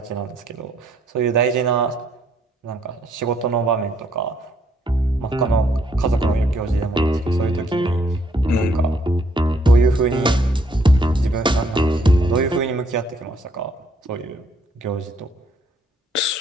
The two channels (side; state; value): both; normal; correlation 0.69